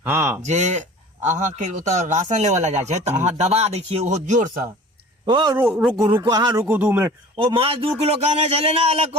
हाँ जे अहाँ के ओतऽ राशन लेवल ला जाय छै तो अहाँ दबा दै छियै ओहो जोर से। ओ रुको रुको हाँ रुको 2 मिनट ओ माछ 2 किलो कहने चले ना अलग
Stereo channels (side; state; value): both; normal; correlation 0.43